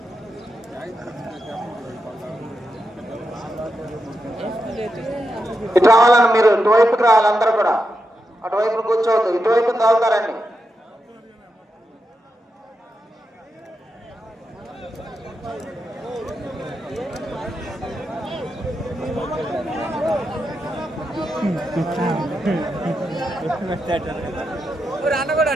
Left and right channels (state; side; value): normal; both; correlation 0.86